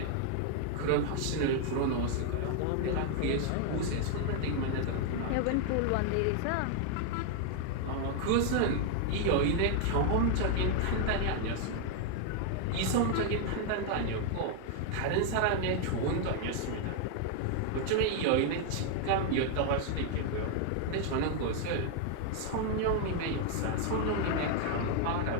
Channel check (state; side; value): different; both; correlation 0.00